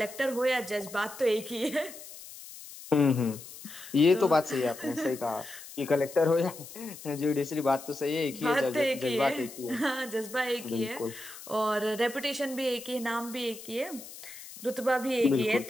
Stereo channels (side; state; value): left; noise; hiss, 15 dB below the sound